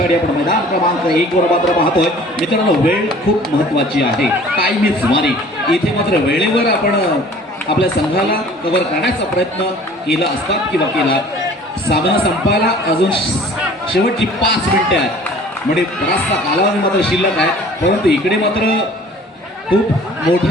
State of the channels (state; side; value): normal; both; correlation 0.49